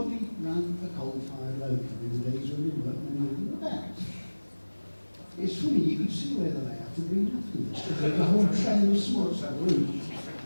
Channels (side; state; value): both; inverted; correlation -1.00